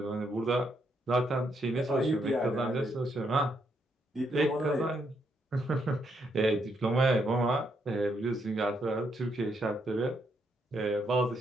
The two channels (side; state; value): both; normal; correlation 0.76